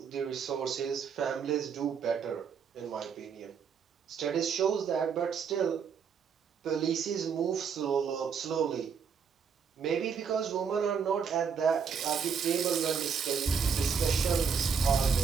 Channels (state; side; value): quieter; left; 6.4 dB